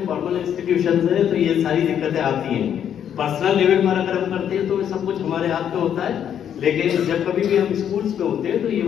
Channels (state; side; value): quieter; right; 9.2 dB